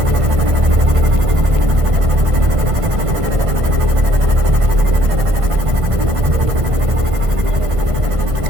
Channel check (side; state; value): left; late; 1.5 ms